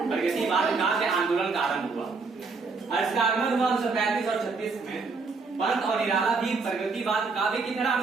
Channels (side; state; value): left; quieter; 4.4 dB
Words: प्रगतिवाद काव्य आंदोलन का आरंभ हुआ। इसका आगमन हुआ 1935 और 36 में। पंत और निराला भी प्रगतिवाद काव्य की तरह